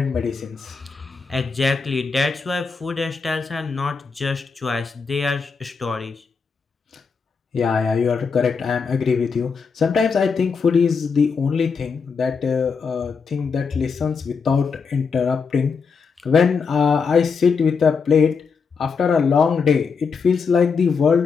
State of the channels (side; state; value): right; quieter; 5.4 dB